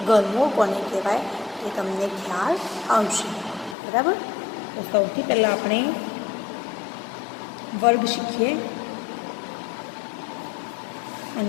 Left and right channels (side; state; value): right; drops out; at 3.8 s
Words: ઘનમૂળ કોને કહેવાય એ તમને ખ્યાલ આવશે. બરાબર. તો સૌથી પહેલાં આપણે વર્ગ શીખીએ